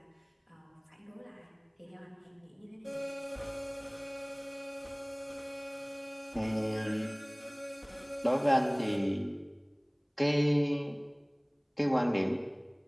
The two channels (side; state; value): both; identical; correlation 1.00